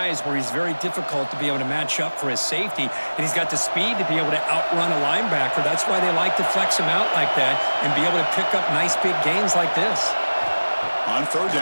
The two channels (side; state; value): both; inverted; correlation -1.00